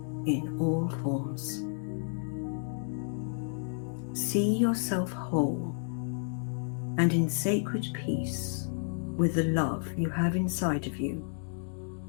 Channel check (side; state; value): right; silent; digital silence